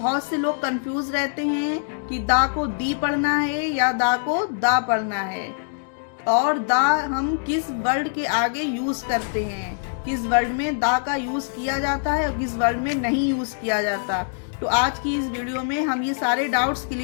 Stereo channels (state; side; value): silent; right; digital silence